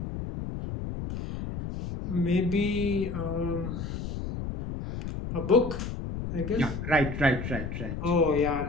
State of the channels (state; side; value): noise; left; rumble, 5 dB below the sound